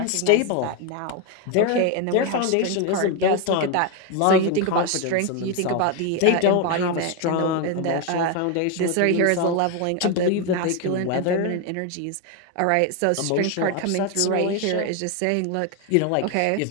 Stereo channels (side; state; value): both; different; correlation 0.01